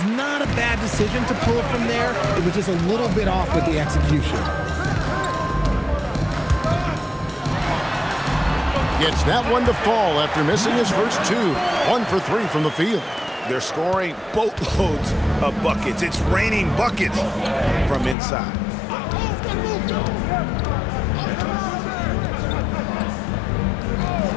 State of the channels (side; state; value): right; drops out; at 18.2 s